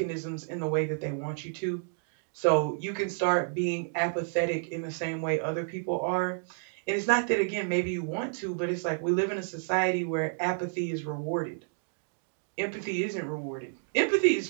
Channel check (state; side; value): silent; left; digital silence